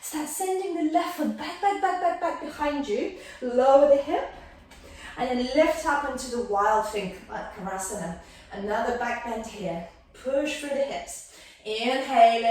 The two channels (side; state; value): both; identical; correlation 1.00